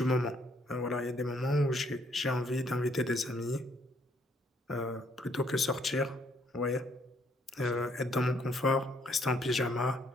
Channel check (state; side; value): normal; both; correlation 0.68